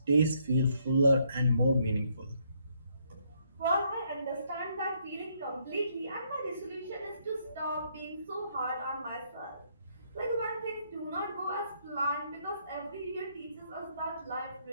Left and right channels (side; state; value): both; inverted; correlation -0.71